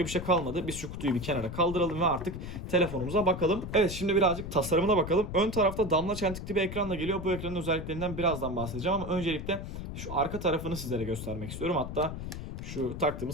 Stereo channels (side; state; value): left; noise; rumble, 7 dB below the sound